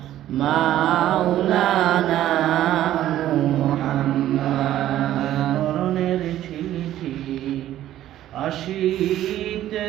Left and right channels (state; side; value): quieter; left; 12.9 dB